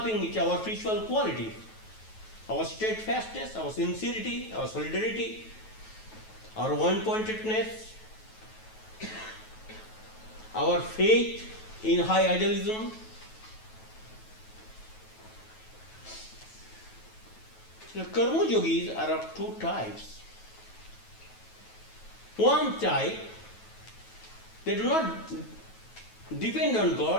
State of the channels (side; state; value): right; late; 9.2 ms